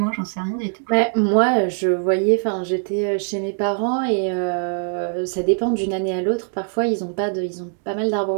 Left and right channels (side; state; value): left; silent; digital silence